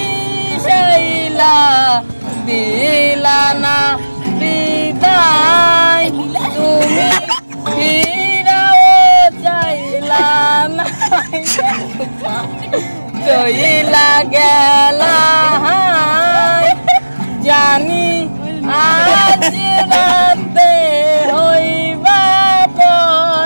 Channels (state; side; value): inverted; both; correlation -1.00